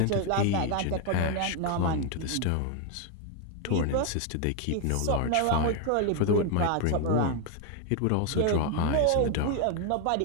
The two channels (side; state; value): both; different; correlation 0.01